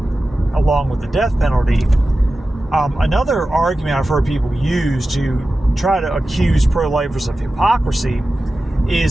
along with the death penalty, another argument I've heard people use to try to accuse pro-lifers of hypocrisy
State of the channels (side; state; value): both; normal; correlation 0.94